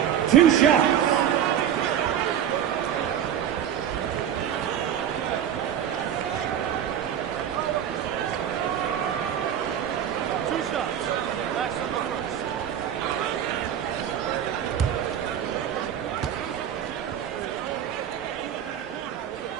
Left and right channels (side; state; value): left; quieter; 9.7 dB